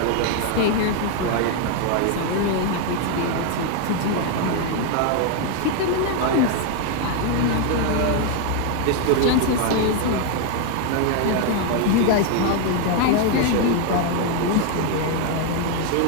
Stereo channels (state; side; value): different; both; correlation 0.00